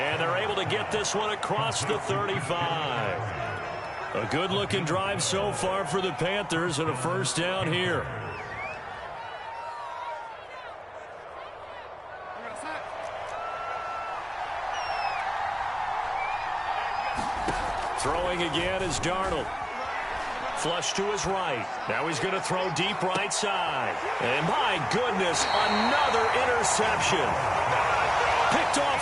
they're able to get this one across the 35. A good-looking drive so far for the Panthers and a 1st down here. Throwing again is Darnold. Flush to his right. Now he's going to throw deep right side. And my goodness, another interception. Picked off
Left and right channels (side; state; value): both; identical; correlation 1.00